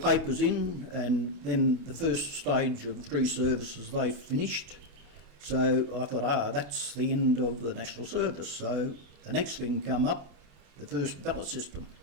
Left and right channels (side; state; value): left; late; 27 ms